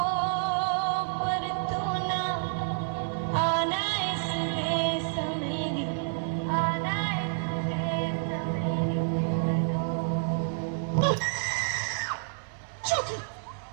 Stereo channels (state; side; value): silent; left; digital silence